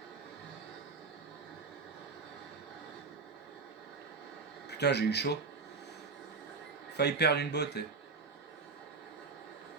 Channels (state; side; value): quieter; left; 4.5 dB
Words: Putain, j'ai eu chaud. Failli perdre une botte.